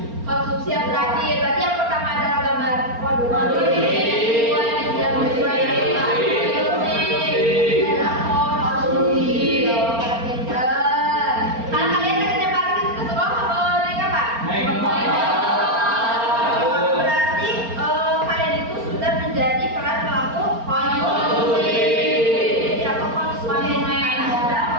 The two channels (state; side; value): late; left; 4.3 ms